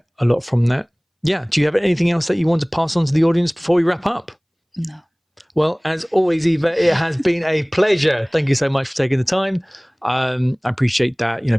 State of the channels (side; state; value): both; identical; correlation 1.00